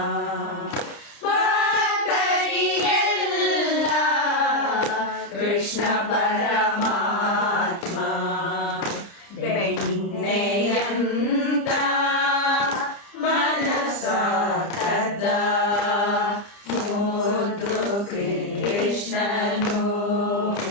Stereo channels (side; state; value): right; late; 30 ms